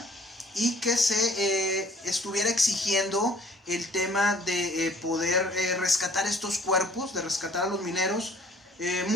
y que se estuviera exigiendo el tema de poder rescatar estos cuerpos, de rescatar a los mineros.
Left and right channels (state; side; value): normal; both; correlation 0.55